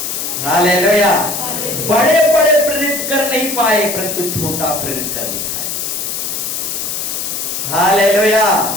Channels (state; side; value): noise; left; hiss, 3 dB below the sound